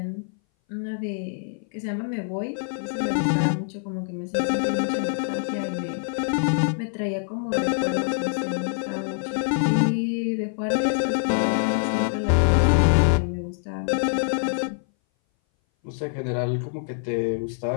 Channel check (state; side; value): silent; right; 59 dB below the other